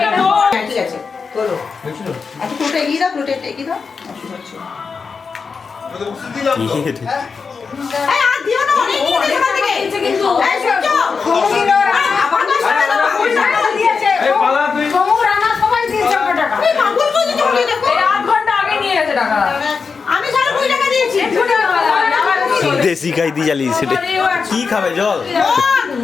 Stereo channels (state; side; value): quieter; right; 5.2 dB